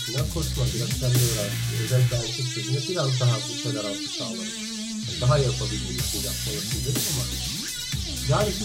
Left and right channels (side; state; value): both; identical; correlation 1.00